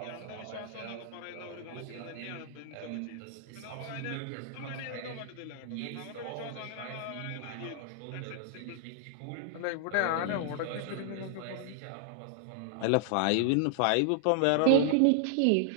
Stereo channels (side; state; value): both; different; correlation -0.01